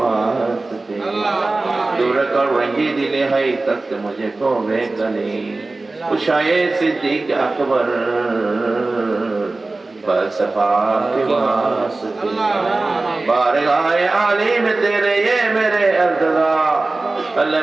दूर कर रंगी दिले है तक मुझे को वे गली, उशाए सिद्दीक अकबर फलसफा के वास्ते। बारगाए आली में तेरे ये मेरे अर्ज़ा, अल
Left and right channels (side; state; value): left; quieter; 3.3 dB